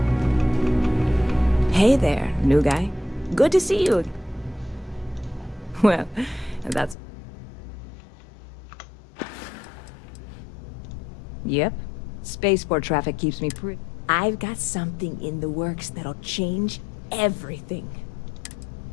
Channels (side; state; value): right; drops out; at 7.0 s